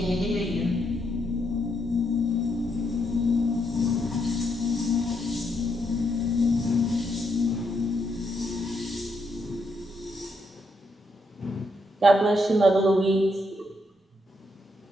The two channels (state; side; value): normal; both; correlation 0.78